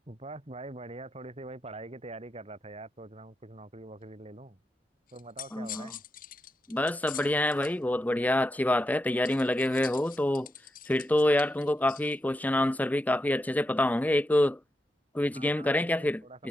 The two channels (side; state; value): both; normal; correlation 0.86